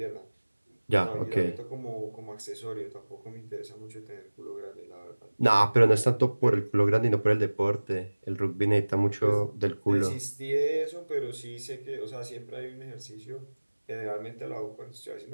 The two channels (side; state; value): both; inverted; correlation -1.00